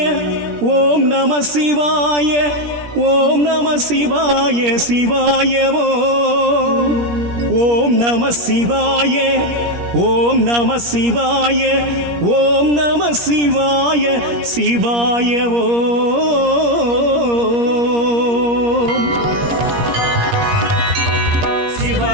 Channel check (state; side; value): late; left; 17 ms